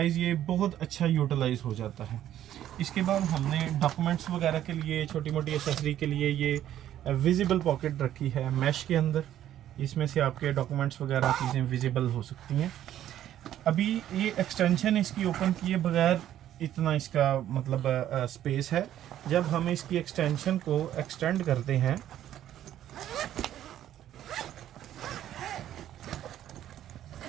ये बहुत अच्छा यूटिलाइज हो जाता है। इसके बाद हमने डॉक्यूमेंट्स वगैरह के लिए, छोटी मोटी एसेसरी के लिए ये विजिबल पॉकेट रखी है मैश के अंदर, इसमें से आपके डॉक्यूमेंट्स वगैरह चीज़ें विजिबल हो सकती हैं। अभी ये एक्सटेंशन इसकी ओपन किए बगैर इतना इसका मतलब स्पेस है। जब हम इसकी एक्सटेंशन को एक्सटेंड करते हैं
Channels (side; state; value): left; quieter; 11.7 dB